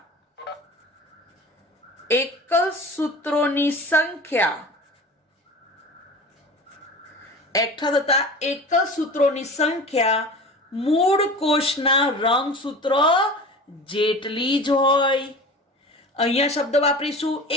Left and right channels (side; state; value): both; normal; correlation 0.36